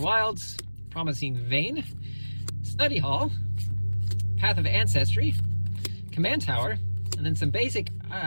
Promising Vein, Study Hall, Path of Ancestry, Command Tower, and then some basic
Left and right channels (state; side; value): inverted; both; correlation -1.00